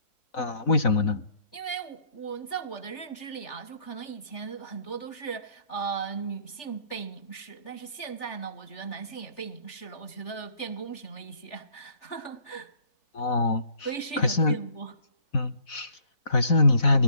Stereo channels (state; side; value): late; right; 3.4 ms